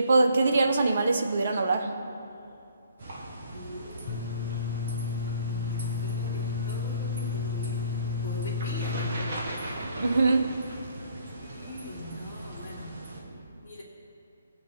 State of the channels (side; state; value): both; inverted; correlation -0.63